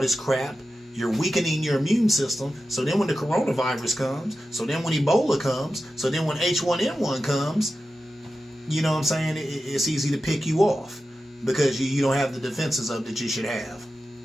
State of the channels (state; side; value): normal; both; correlation 0.93